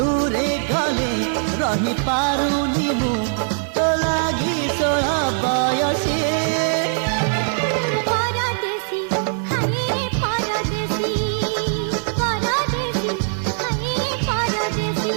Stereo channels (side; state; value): left; silent; digital silence